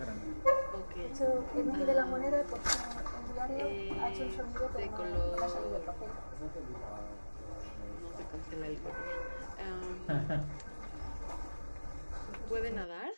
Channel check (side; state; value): both; inverted; correlation -1.00